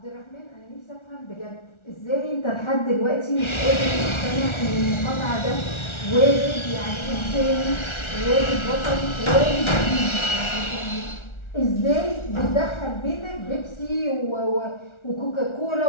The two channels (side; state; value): right; late; 1.4 ms